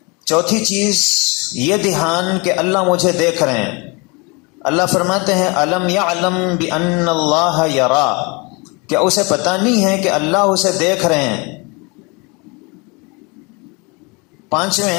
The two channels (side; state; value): right; quieter; 28.8 dB